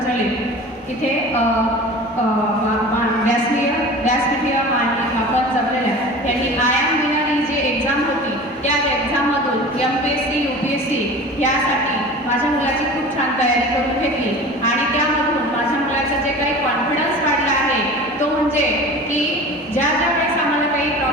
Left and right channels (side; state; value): both; normal; correlation 0.37